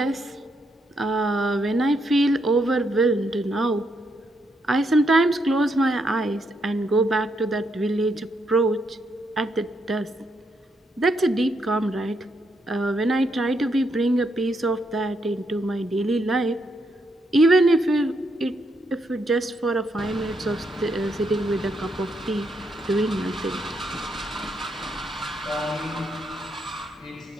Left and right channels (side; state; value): both; normal; correlation 0.77